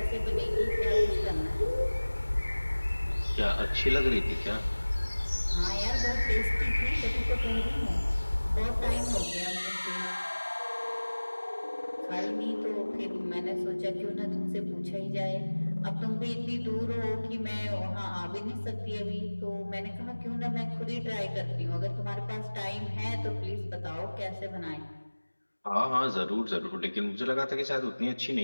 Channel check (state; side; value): inverted; both; correlation -1.00